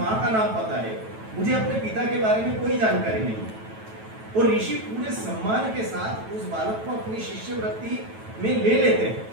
का नाम पता है, मुझे अपने पिता के बारे में कोई जानकारी नहीं। और ऋषि पूरे सम्मान के साथ उस बालक को अपनी शिष्यवृत्ति में ले लेते हैं,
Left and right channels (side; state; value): left; late; 9.2 ms